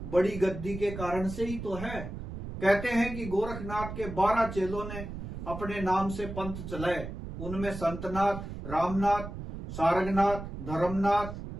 बड़ी गद्दी के कारण से ही तो है। कहते हैं कि गोरखनाथ के 12 चेलों ने अपने नाम से पंथ चलाए। उनमें संतनाथ, रामनाथ, सारंगनाथ, धर्मनाथ,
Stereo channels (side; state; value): right; noise; rumble, 8 dB below the sound